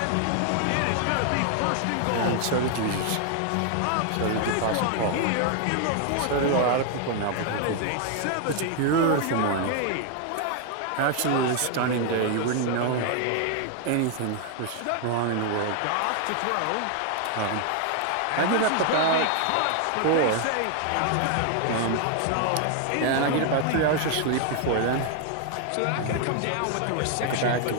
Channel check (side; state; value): both; different; correlation 0.00